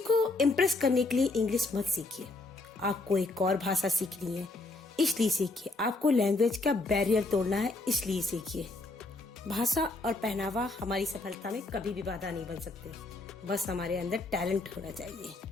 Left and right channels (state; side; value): quieter; right; 3.1 dB